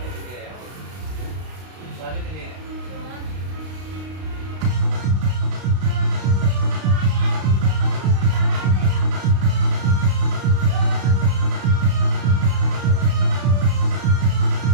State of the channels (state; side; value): late; left; 32 ms